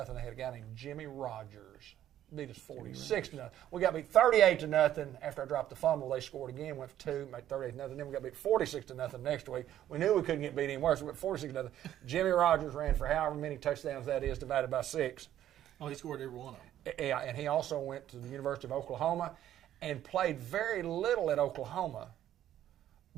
They had a guy named Jimmy Rogers. Beat us 46-0. We got beat 38-0 after I dropped the fumble. They scored again, went for 2, made 38-0. Then we got beat 46-0 next week. We knew we couldn't get beat any worse. We went 46-0. Jimmy Rogers ran for however many touchdowns that is divided by 6. Oh, he scored every one of them. Yeah, and he also went to the University of Oklahoma and played very little at Oklahoma,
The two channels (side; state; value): left; quieter; 11.8 dB